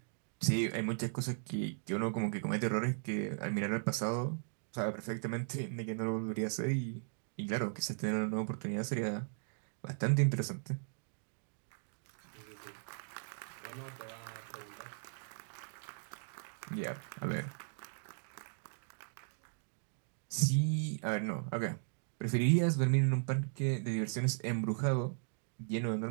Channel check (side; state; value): left; silent; digital silence